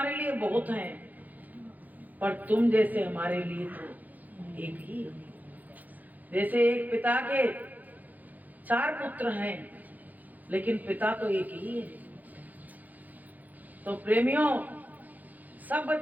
लिए बहुत हैं, पर तुम जैसे हमारे लिए तो एक ही हो। जैसे एक पिता के 4 पुत्र हैं, लेकिन पिता तो एक ही है। तो प्रेमियों, सब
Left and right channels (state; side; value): late; left; 0.081 ms